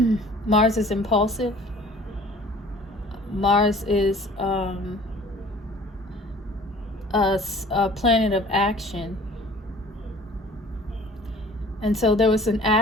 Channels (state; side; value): normal; both; correlation 0.49